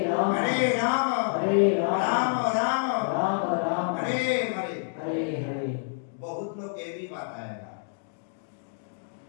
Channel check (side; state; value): right; silent; digital silence